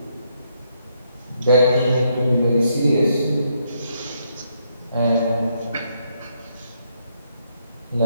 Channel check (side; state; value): both; inverted; correlation -0.75